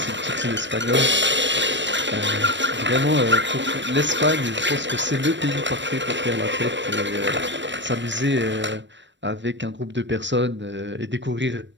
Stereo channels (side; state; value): left; late; 0.53 ms